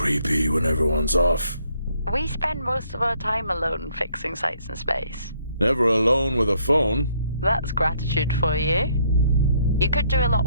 creepy when everyone's off. We spend most of our time alone fixing sights in space. Never alone with a phone. That's gratitude for you. You could do a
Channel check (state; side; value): inverted; both; correlation -0.68